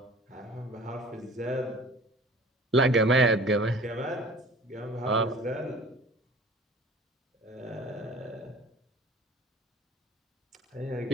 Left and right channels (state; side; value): normal; both; correlation 0.45